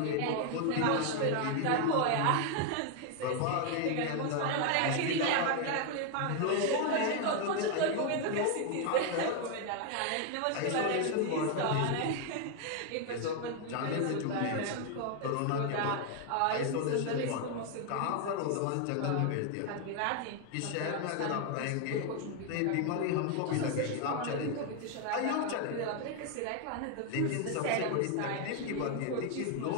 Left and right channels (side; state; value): both; different; correlation 0.01